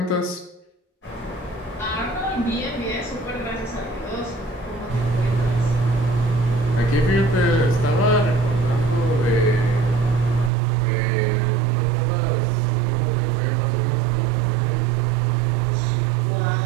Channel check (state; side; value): drops out; left; at 10.5 s